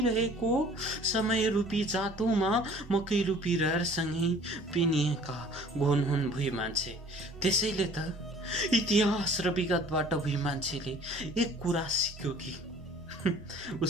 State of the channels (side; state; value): both; normal; correlation 0.51